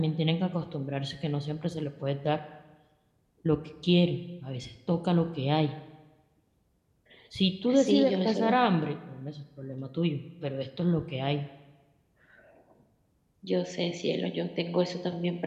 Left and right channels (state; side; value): identical; both; correlation 1.00